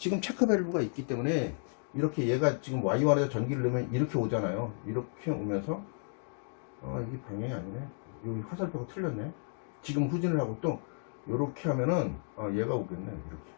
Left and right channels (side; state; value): right; silent; 56 dB below the other